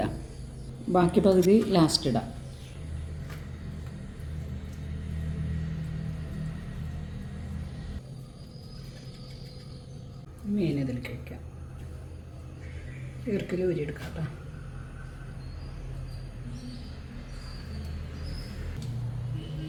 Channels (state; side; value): identical; both; correlation 1.00